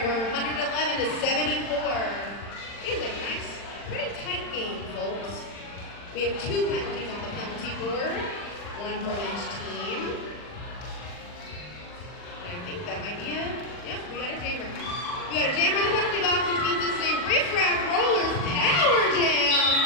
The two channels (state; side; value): late; right; 40 ms